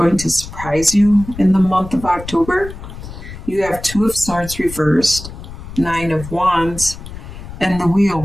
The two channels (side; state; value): left; noise; rumble, 12 dB below the sound